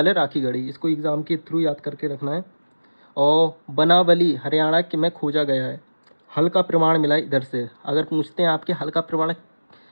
है राखीगढ़ी। इसको एग्ज़ाम के थ्रू याद करके रखना है। और बनावली हरियाणा के में खोजा गया है। हल का प्रमाण मिला इधर से। अगर पूछते हैं आपके हल का प्रमाण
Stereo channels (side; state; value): both; inverted; correlation -1.00